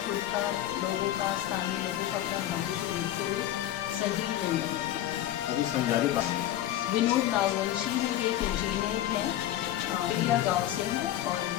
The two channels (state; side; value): quieter; right; 12.9 dB